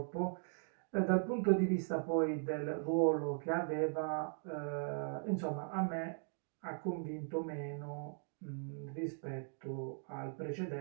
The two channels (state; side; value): silent; left; 52 dB below the other